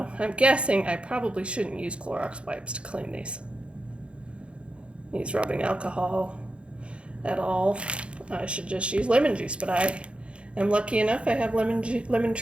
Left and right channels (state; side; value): late; left; 0.058 ms